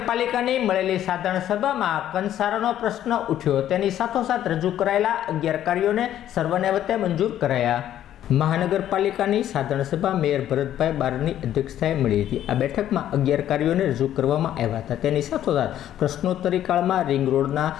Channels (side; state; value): right; quieter; 11.6 dB